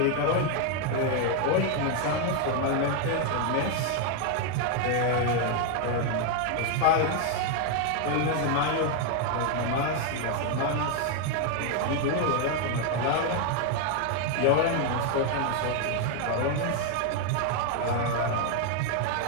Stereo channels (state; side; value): different; both; correlation 0.01